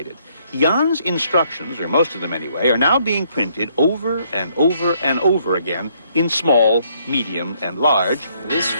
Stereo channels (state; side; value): inverted; both; correlation -0.68